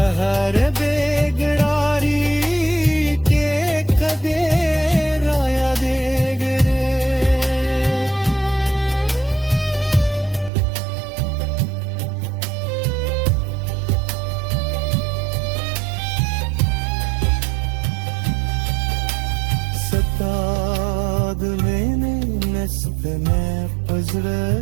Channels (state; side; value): drops out; left; at 10.5 s